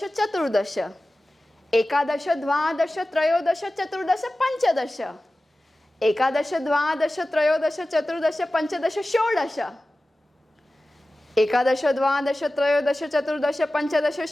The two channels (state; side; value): normal; both; correlation 0.96